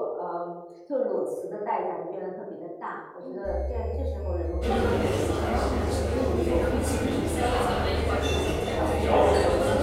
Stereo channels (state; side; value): identical; both; correlation 1.00